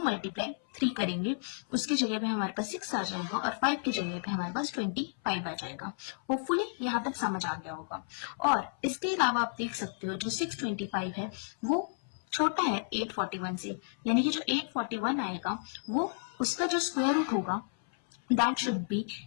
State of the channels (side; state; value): right; silent; 56 dB below the other